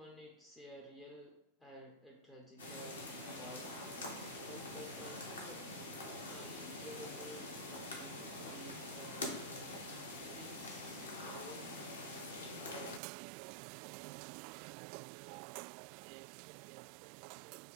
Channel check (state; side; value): drops out; left; at 13.0 s